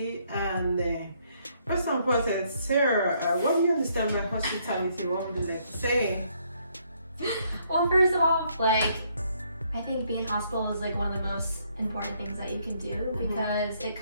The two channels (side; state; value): both; inverted; correlation -0.70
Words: and first and foremost, Sarah, what do you understand by hospitality? What would you like to say? Well, first of all, like, I think being hospitable is like one of the most important things that you can do, because it